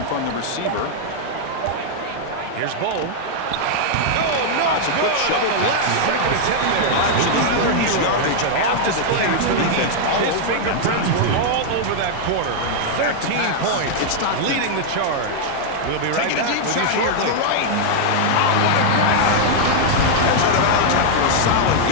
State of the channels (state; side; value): different; both; correlation -0.01